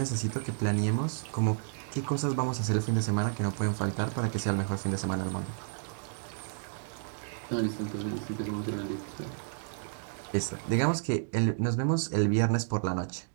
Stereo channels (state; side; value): silent; left; digital silence